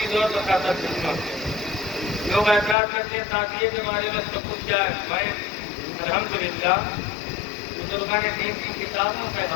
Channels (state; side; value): drops out; right; at 2.8 s